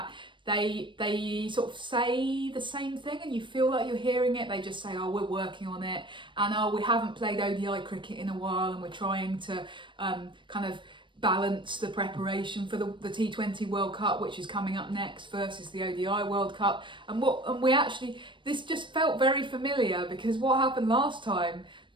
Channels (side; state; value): left; late; 0.24 ms